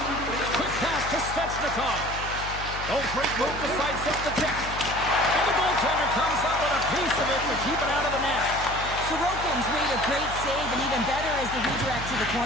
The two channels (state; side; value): noise; left; hum, 10 dB below the sound